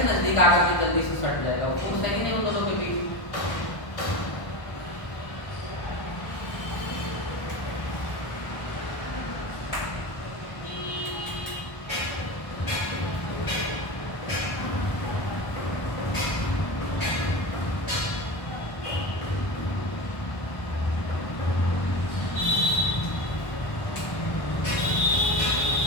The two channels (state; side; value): late; right; 1.2 ms